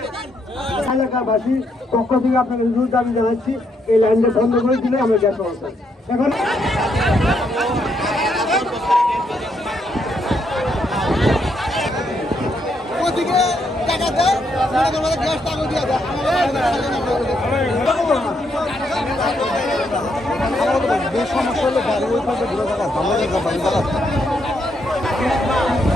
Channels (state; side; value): normal; both; correlation 0.76